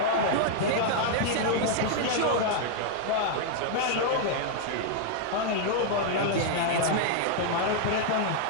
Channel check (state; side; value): different; both; correlation -0.01